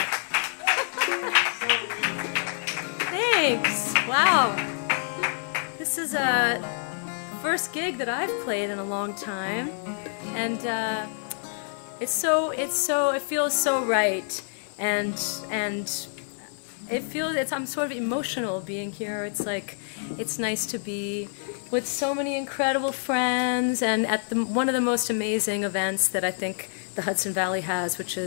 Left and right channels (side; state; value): right; silent; 60 dB below the other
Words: Thanks. Wow. This is a first gig that I've played in a long time, and it feels so right, and I'm sort of emotional being here. It's like, it's nice to be with so many incredible friends, and at one of the most amazing events that I think the Hudson Valley has, which